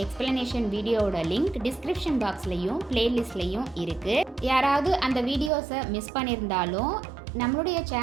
எக்ஸ்பிளனேஷன் வீடியோவோட லிங்க் டிஸ்கிரிப்ஷன் பாக்ஸ்லையும் பிளேலிஸ்ட்லையும் இருக்குது. யாராவது அந்த வீடியோஸை மிஸ் பண்ணியிருந்தாலும் நம்மளுடைய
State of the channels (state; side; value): drops out; left; at 5.5 s